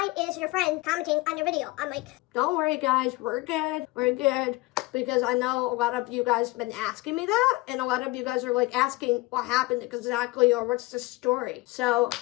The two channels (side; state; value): right; quieter; 21.7 dB